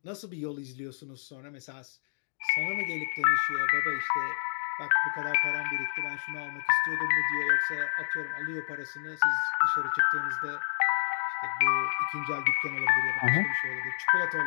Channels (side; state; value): right; silent; 58 dB below the other